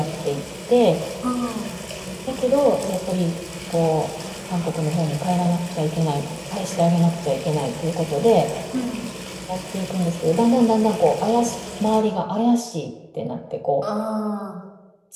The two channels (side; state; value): both; identical; correlation 1.00